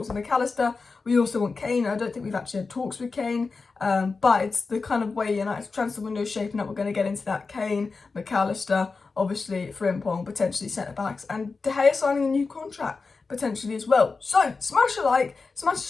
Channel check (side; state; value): right; quieter; 4.3 dB